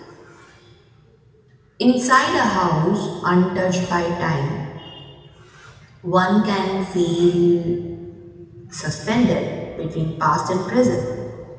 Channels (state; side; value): identical; both; correlation 1.00